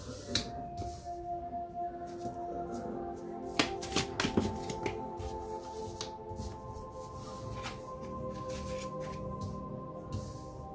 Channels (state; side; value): identical; both; correlation 1.00